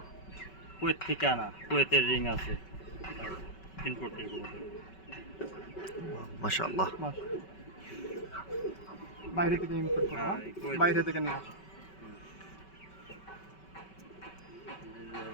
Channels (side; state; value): right; late; 5.3 ms